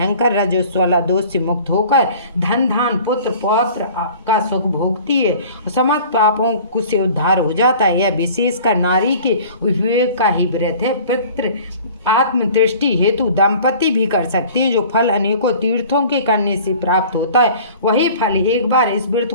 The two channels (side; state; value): both; inverted; correlation -0.46